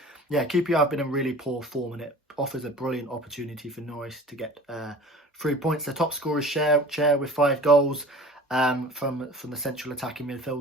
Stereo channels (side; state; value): both; normal; correlation 0.42